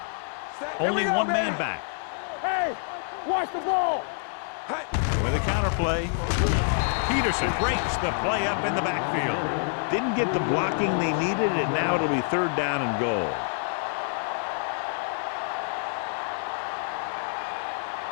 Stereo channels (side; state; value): right; silent; 60 dB below the other